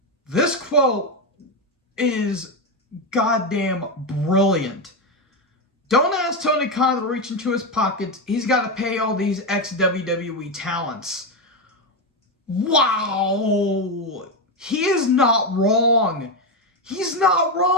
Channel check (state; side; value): normal; both; correlation 0.10